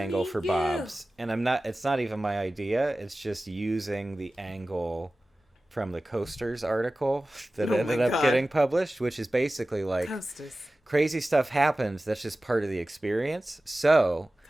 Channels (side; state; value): both; normal; correlation 0.96